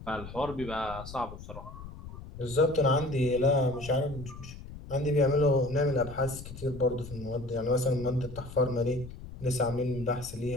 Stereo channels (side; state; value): left; noise; rumble, 13 dB below the sound